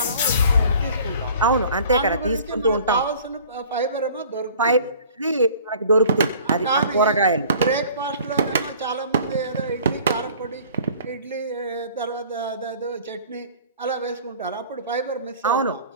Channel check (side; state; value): both; inverted; correlation -0.49